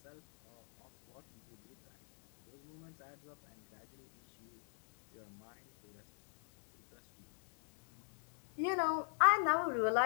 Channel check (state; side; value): silent; right; digital silence